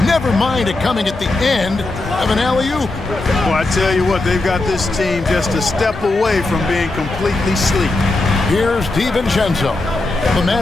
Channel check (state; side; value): quieter; right; 3.0 dB